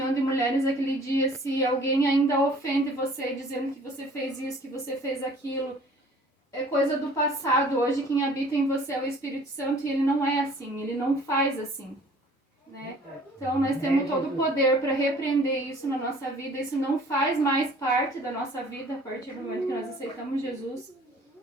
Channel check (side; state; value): both; normal; correlation 0.52